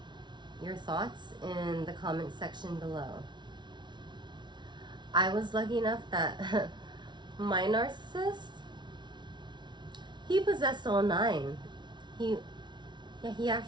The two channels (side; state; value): left; late; 0.22 ms